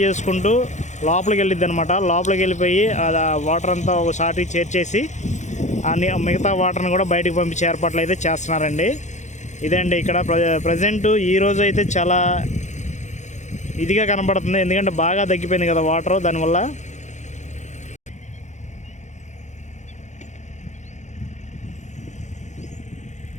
చేసుకుంటూ లోపలికి వెళ్ళిద్ది అనమాట. లోపలికి వెళ్ళిపోయి ఆ వాటర్ అంతా ఒకసారి చేర్చేసి మిగతా వాటర్ని కూడా బయటకు పంపించే ఏర్పాట్లు అయితే చేస్తున్నారండి. ఇదండి ఇక్కడ ప్రజెంట్ ఈరోజు అయితే చాలా ఇదిగా కనపడుతుంది, ఎందుకంటే బాగా తగ్గిపోయింది కదా వాటర్, దానివల్ల.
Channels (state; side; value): late; right; 0.34 ms